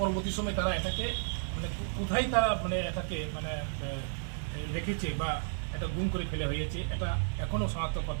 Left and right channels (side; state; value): left; silent; digital silence